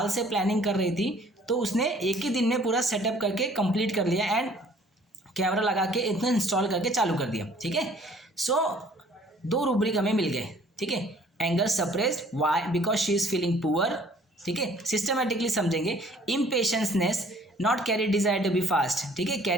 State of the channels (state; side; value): normal; both; correlation 0.56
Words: से प्लानिंग कर रही थी, तो उसने एक ही दिन में पूरा सेटअप करके कंप्लीट कर लिया, एंड कैमरा लगा के इतना इंस्टॉल करके चालू कर दिया, ठीक है। सो 2 रूब्रिक हमें मिल गए, ठीक है। Anger suppressed, why, because she is feeling poor, ठीक है। सिस्टमेटिकली समझेंगे। Impatientness, not great desire to be fast, ठीक है।